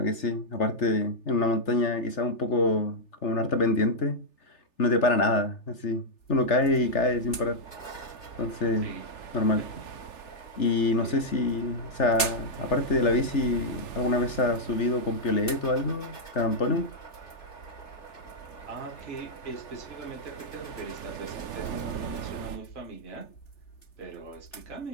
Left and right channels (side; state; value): right; late; 3.3 ms